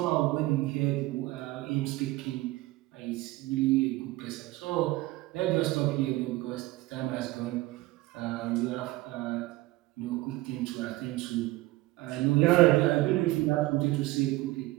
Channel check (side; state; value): left; quieter; 19.3 dB